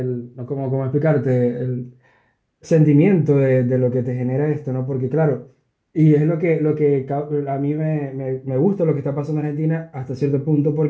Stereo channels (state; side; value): identical; both; correlation 1.00